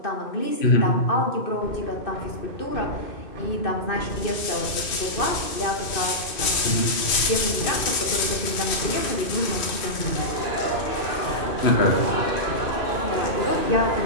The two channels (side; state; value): right; late; 2.5 ms